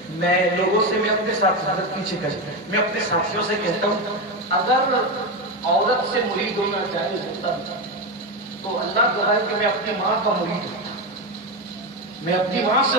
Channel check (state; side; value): normal; both; correlation 0.13